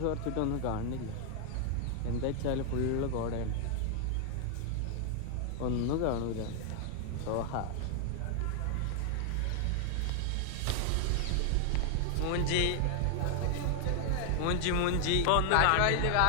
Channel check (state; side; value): different; both; correlation 0.00